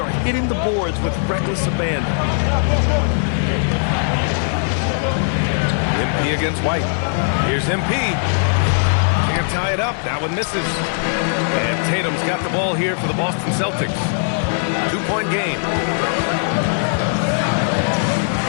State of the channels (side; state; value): right; silent; digital silence